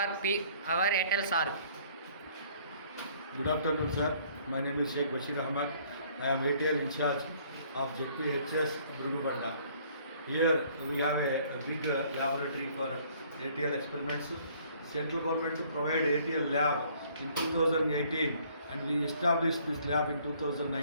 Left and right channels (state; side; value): inverted; both; correlation -0.59